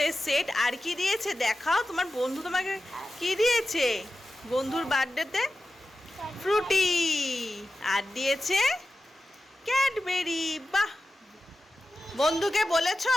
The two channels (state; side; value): normal; both; correlation 0.93